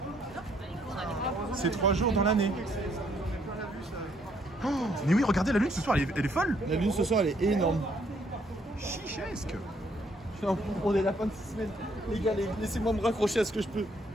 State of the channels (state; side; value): normal; both; correlation 0.69